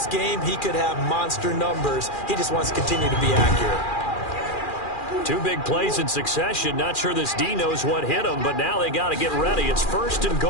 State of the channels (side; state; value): right; late; 2.4 ms